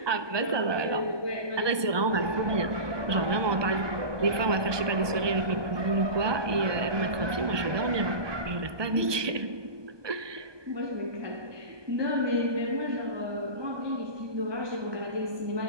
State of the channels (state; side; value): late; left; 1.2 ms